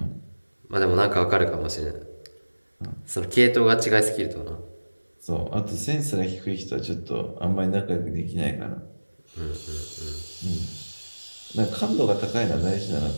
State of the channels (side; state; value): both; inverted; correlation -1.00